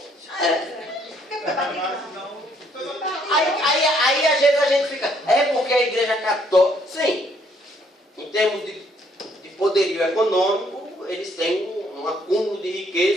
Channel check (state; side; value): normal; both; correlation 0.67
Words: É. Mas não. Aí às vezes a gente fica, é porque a igreja católica, sim, em termos de poderio econômico, eles têm um acúmulo de